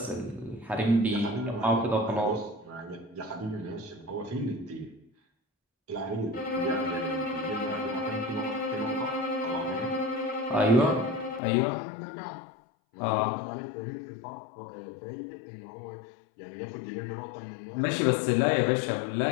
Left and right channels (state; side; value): drops out; right; at 11.4 s